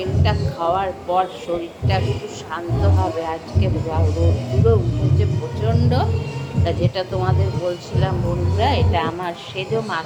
খাওয়ার পর শরীরটা একটু শান্ত হবে। আজকে রোদ্দুরও উঠেছে প্রচণ্ড, তা যেটা তোমাদের বলছিলাম বন্ধুরা, এটা আমার সেজো মার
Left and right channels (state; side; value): identical; both; correlation 1.00